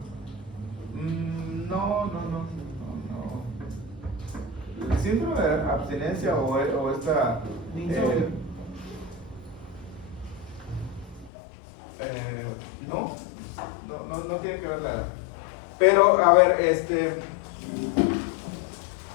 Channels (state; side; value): drops out; right; at 11.3 s